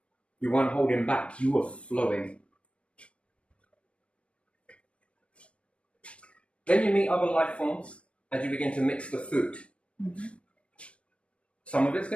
You weren't holding back. You were flowing. Then you meet other life forms and you begin to mix the food. Mm-hmm. Some of it's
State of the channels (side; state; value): right; late; 0.061 ms